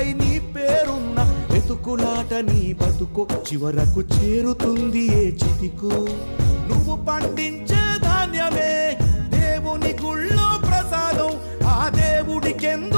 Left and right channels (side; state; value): both; inverted; correlation -1.00